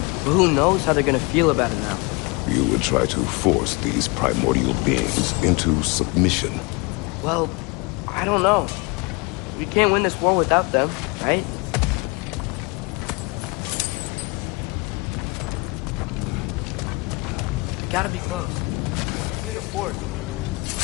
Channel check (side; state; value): right; quieter; 27.7 dB